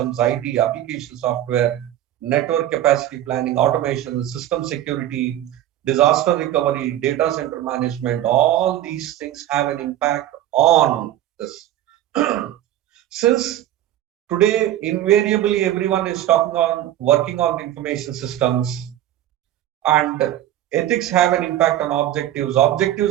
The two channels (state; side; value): quieter; left; 12.7 dB